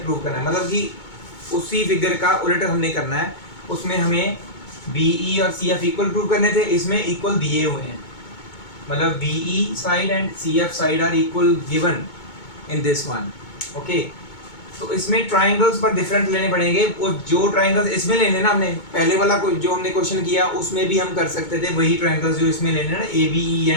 प्रूव करना है, मतलब कि उसी फिगर का उलट हमने करना है। उसमें हमें बी ई और सी एफ इक्वल प्रूव करने थे, इसमें इक्वल दिए हुए हैं, मतलब B E side and C F side are equal given in this one, okay. तो इसमें ट्रायंगल्स पर डिफरेंट लेने पड़ेंगे, वो जो ट्रायंगल्स इसमें लेने ना, हमने पहले वाला जो हमने क्वेश्चन किया उसमें भी हम कर सकते थे वही ट्रायंगल्स जो इसमें लेने ना, A B E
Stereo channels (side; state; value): right; late; 2.2 ms